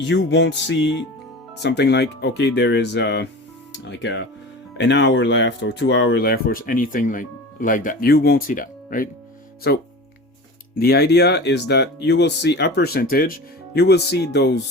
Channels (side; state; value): both; normal; correlation 0.34